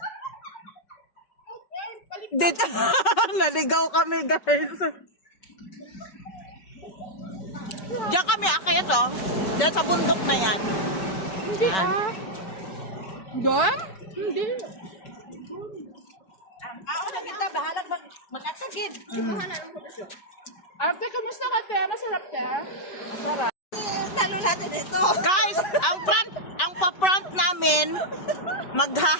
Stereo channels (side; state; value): right; late; 5.3 ms